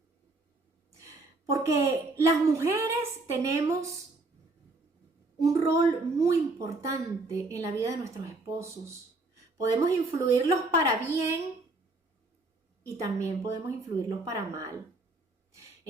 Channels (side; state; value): left; quieter; 3.2 dB